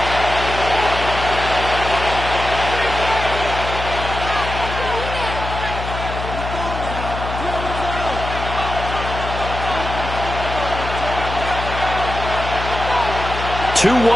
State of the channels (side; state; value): left; noise; hum, 6 dB below the sound